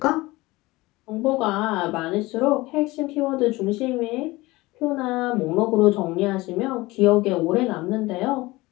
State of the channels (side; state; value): right; quieter; 20.6 dB